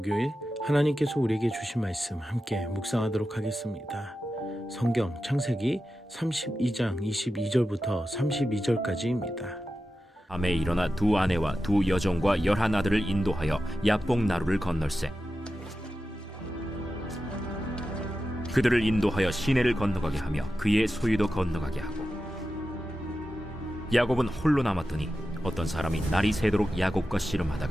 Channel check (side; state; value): both; normal; correlation 0.92